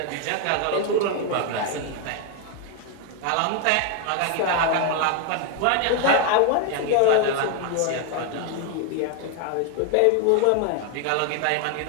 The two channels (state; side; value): different; both; correlation 0.01